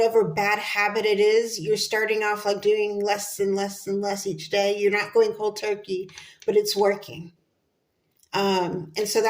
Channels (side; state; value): both; identical; correlation 1.00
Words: bad habit it is. You're starting off like doing less and less and less each day. You're not going cold turkey, but it's working. And so